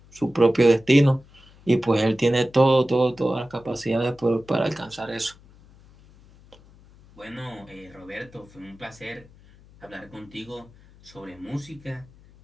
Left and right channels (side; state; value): left; noise; hum, 25 dB below the sound